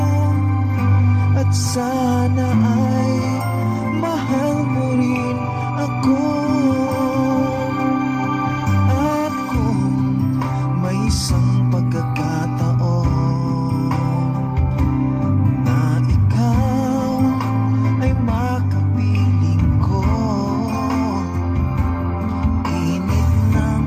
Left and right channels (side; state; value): both; identical; correlation 1.00